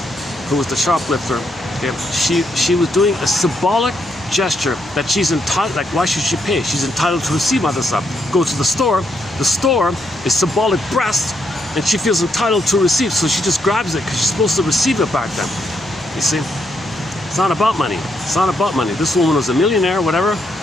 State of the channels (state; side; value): normal; both; correlation 0.77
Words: who was the shoplifter, okay, she was doing a symbolic gesture that she's entitled, like, why should she pay? She's entitled to receive mother's love. Go to the store is symbolic breast, and she feels entitled to receive, so she just grabs it because she's supposed to receive it back then. You see? It's not about money. It's not about money. This woman was a millionaire, whatever.